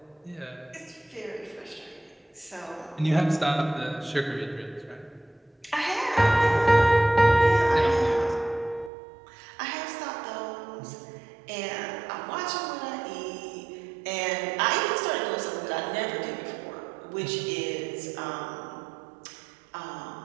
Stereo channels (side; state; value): left; drops out; at 8.9 s